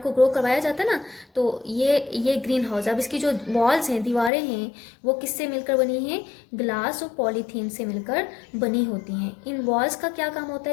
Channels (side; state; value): right; drops out; at 4.3 s